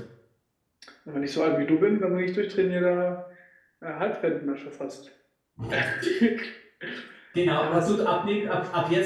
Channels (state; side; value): identical; both; correlation 1.00